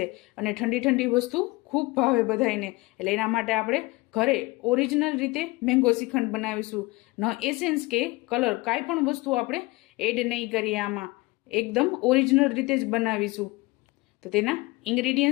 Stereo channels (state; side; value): quieter; right; 22.7 dB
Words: અને ઠંડી ઠંડી વસ્તુ ખૂબ ભાવે બધાને. એટલે એના માટે આપણે ઘરે ઓરિજિનલ રીતે મેંગો શ્રીખંડ બનાવીશું. ન એસેન્સ કે કલર કાંઈ પણ વસ્તુ આપણે એડ નહીં કરીએ, આમાં એકદમ ઓરિજિનલ રીતે જ બનાવીશું. તો તેના